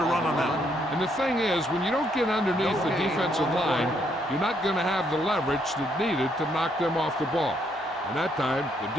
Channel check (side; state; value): both; normal; correlation 0.72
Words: run on that one. And the thing is, when you don't get underneath the defensive line, you're not going to have the leverage that's needed to knock them off the ball. And that time, the